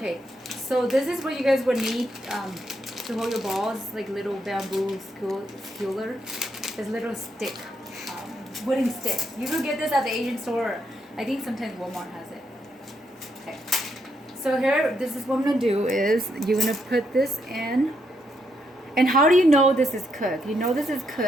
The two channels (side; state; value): both; normal; correlation 0.78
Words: so this is what you guys would need to hold your balls, like little bamboo skewer. This little stick, wooden stick. You can get this at the Asian store. I think sometimes Walmart has it. Okay. So here, this is what I'm going to do is you're going to put this in, And how do you know this is cooked? You know this is